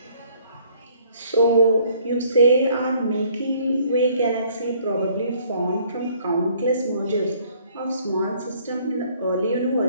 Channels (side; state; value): both; inverted; correlation -0.61